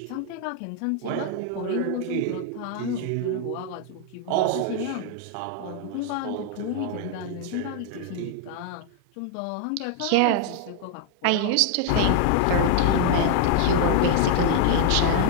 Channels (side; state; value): both; different; correlation 0.00